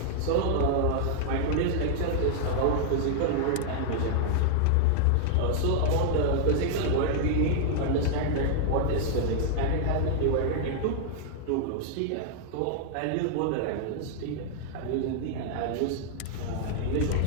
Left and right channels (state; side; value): different; both; correlation -0.01